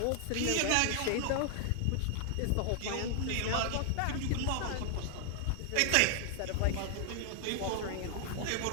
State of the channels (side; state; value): both; different; correlation 0.00